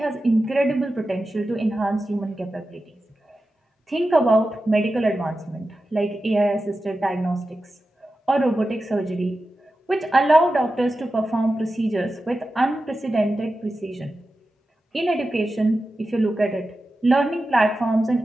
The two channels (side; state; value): both; normal; correlation 0.92